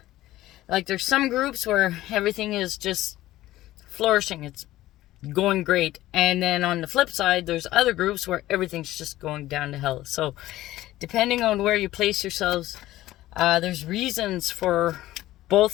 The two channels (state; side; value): quieter; right; 15.6 dB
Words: groups where everything is just flourishing. It's going great. And then on the flip side, there's other groups where everything's just going down to hell. So depending on where you place yourselves, there's reasons for both